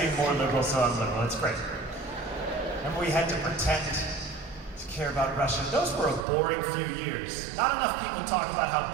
more liberal, so I'm liberal. It's great. And we had to pretend to care about Russia. Those were a boring few years. Not enough people talk about how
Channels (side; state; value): left; drops out; at 6.2 s